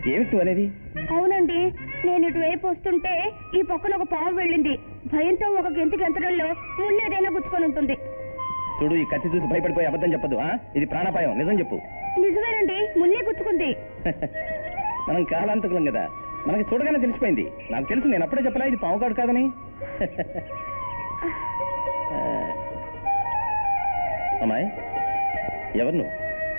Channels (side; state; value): both; inverted; correlation -1.00